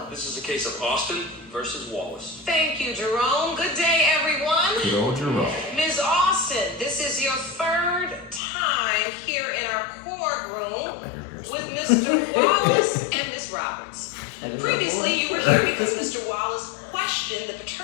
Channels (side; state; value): right; drops out; at 8.4 s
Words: This is a case of Austin versus Wallace. Thank you, Jerome. Good day, everyone. Good old Jerome. Ms. Austin, this is your third time here in our courtroom with Mr. Wallace and Ms. Roberts. Previously, you were here because Mr. Wallace questioned the